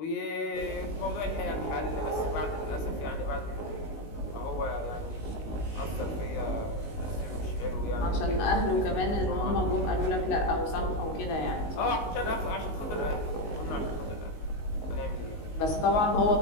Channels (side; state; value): right; late; 19 ms